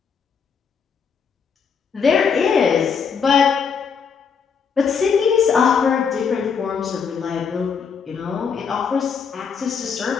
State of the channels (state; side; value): quieter; right; 6.3 dB